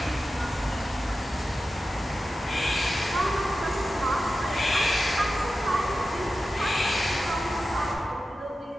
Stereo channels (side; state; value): both; normal; correlation 0.93